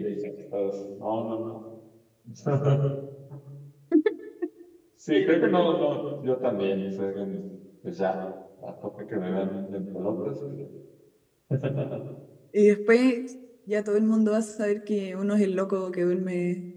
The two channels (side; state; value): both; identical; correlation 1.00